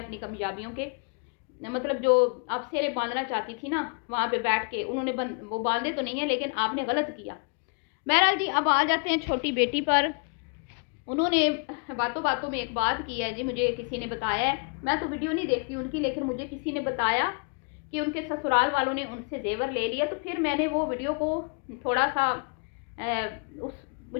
कामयाबियों के मतलब जो आप सेरे बांधना चाहती थी ना, वहाँ पे बैठ के उन्होंने वो बांधे तो नहीं है, लेकिन आपने गलत किया। बहरहाल जी, अब आ जाते हैं छोटी बेटी पर। उन्होंने बातों बातों में एक बात की है जी, मुझे किसी ने बताया है, मैं तो वीडियो नहीं देखती उनकी, लेकिन मुझे किसी ने बताया कि उनके ससुराल वालों ने उनसे जेवर ले लिया। तो फिर मैंने वो वीडियो को थोड़ा सा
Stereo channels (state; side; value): quieter; right; 37.9 dB